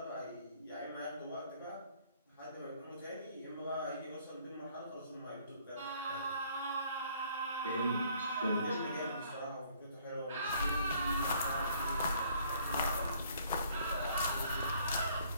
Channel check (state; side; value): inverted; both; correlation -0.61